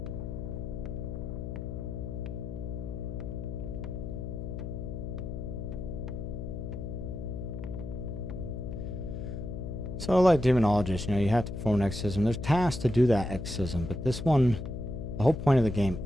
So like demonologists, you know, you have to perform an exorcism. There's tasks to do that exorcism, but this one, the whole point of the game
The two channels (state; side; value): noise; left; hum, 6 dB below the sound